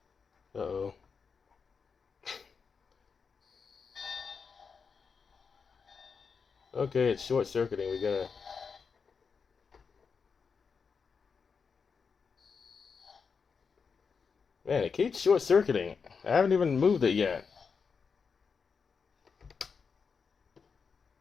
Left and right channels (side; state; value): right; quieter; 5.6 dB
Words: Uh-oh. Okay, it's short-circuiting. We gotta... Man, it keeps short-circuiting. I haven't even moved it yet.